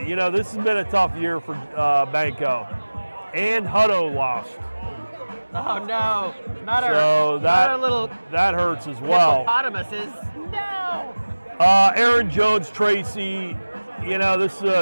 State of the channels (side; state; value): both; inverted; correlation -1.00